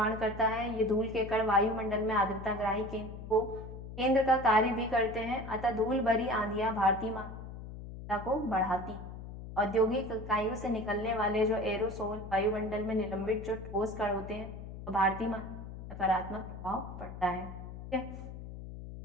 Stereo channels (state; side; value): noise; left; hum, 11 dB below the sound